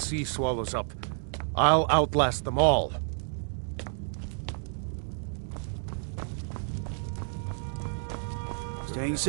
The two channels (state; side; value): silent; left; digital silence